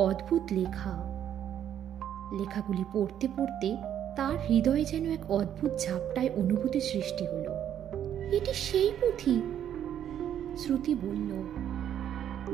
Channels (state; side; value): quieter; left; 10.1 dB